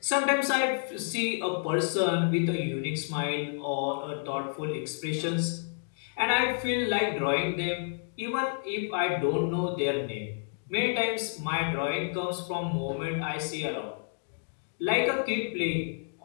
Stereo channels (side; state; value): right; silent; digital silence